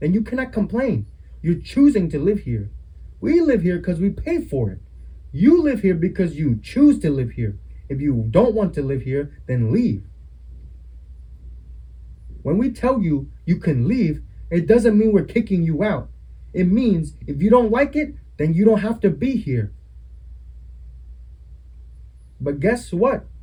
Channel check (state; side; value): identical; both; correlation 1.00